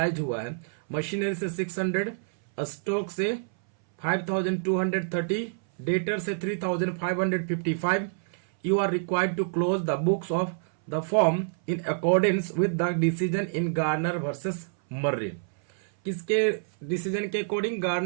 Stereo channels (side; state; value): left; silent; 60 dB below the other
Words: हुआ है। मशीनरी से 600, स्टॉक से 5230, डेटर से 3555, you are required to close the books of the firm in accordance with the decision in Garner versus Murray. किसके डिसीजन के अकॉर्डिंग?